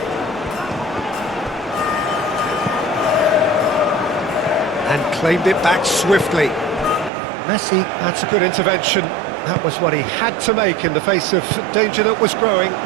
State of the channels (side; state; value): left; drops out; at 7.1 s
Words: And claimed it back swiftly. Messi, that's a good intervention. That was what he had to make in the face of danger that was growing.